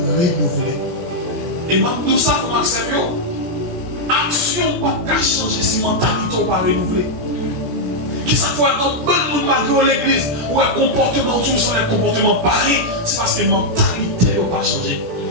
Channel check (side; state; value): left; late; 17 ms